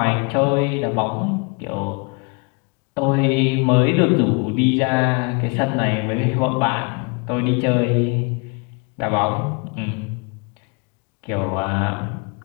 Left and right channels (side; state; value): right; quieter; 31.8 dB